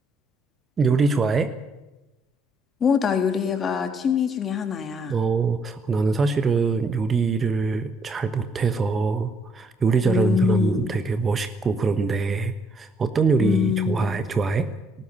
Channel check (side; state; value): both; normal; correlation 0.69